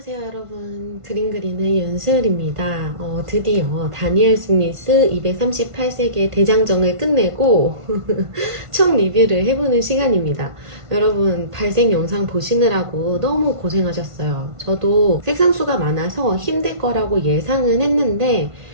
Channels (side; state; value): left; late; 1.5 ms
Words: 여러분, 그림 그리는 윤슬입니다. 드디어 다니엘 스미스 238세기의 대장정을 끝내고 총 리뷰를 해보는 시간입니다. 여러분, 발색 영상 보시느라고 너무 고생하셨어요. 저도 색상수가 많아서 힘들 거라고 예상은 했는데